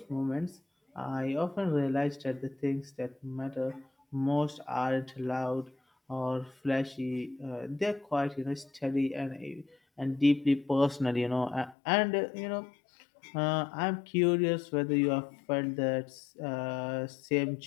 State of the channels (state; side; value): drops out; right; at 11.8 s